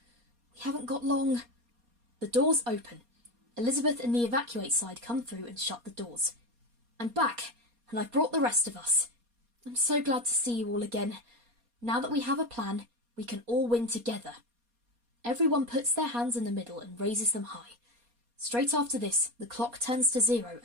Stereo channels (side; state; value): left; late; 4.2 ms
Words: We haven't got long. The doors open. Elizabeth and the evacuate side come through and shut the doors. I'm back, and I've brought the rest of us. I'm so glad to see you all again. Now that we have a plan, we can all win together. Everyone puts their hands in the middle and raises them high. Straight after this, the clock turns to 0